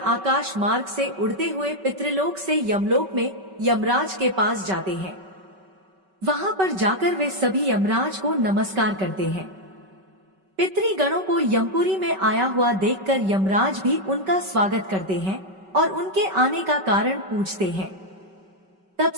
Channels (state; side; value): late; left; 5.3 ms